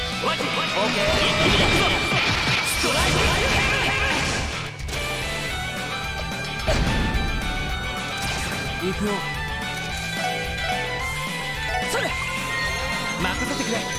オッケー。ストライク。行くよ。それ任せてくれ。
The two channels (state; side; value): identical; both; correlation 1.00